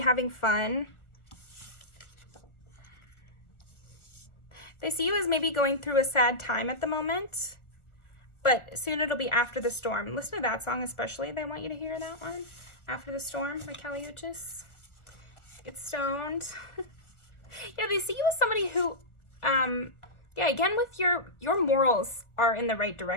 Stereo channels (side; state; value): right; late; 1.5 ms